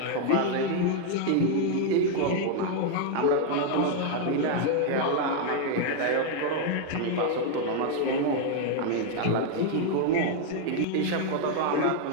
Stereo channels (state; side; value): different; both; correlation 0.00